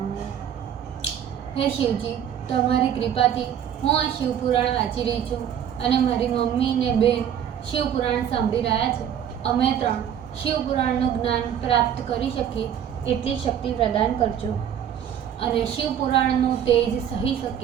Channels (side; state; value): left; quieter; 9.3 dB